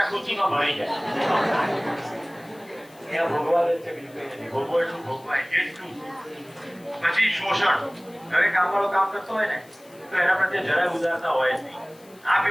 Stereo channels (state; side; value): noise; left; hiss, 26 dB below the sound